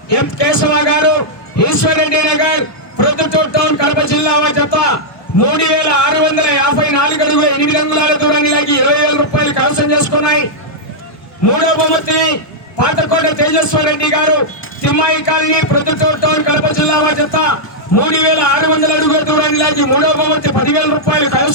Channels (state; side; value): late; right; 1.2 ms